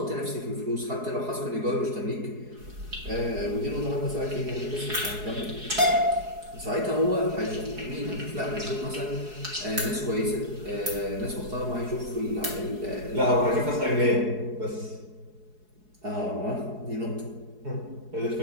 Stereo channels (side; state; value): left; late; 4.7 ms